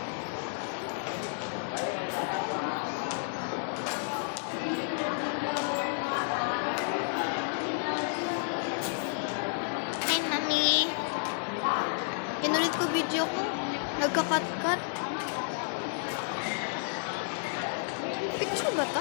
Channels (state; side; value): silent; right; 56 dB below the other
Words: Hi, mami. Pinulit ko video ko. Nagka-cut-cut. Picture ba